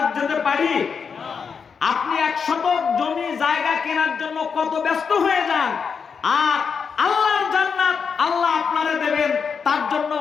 যেতে পারি? আপনি 1 শতক জমি জায়গা কেনার জন্য কত ব্যস্ত হয়ে যান, আর আল্লাহর জান্নাত আল্লাহ আপনারে দেবেন, তার জন্য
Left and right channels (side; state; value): right; quieter; 6.1 dB